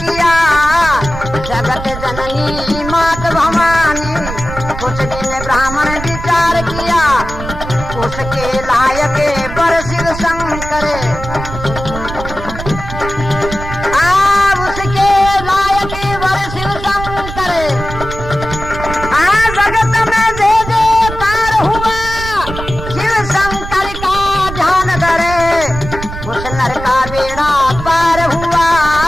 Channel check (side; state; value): right; noise; rumble, 9 dB below the sound